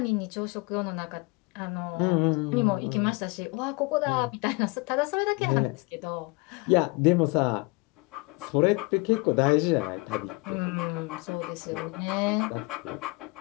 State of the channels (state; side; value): quieter; right; 26.5 dB